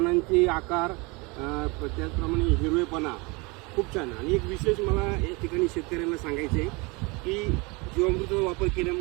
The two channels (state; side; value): quieter; left; 27.3 dB